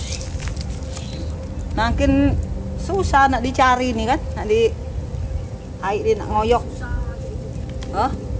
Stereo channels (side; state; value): both; identical; correlation 1.00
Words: Makin susah nak dicari nih kan, nak di air dia nak ngoyok. Oh,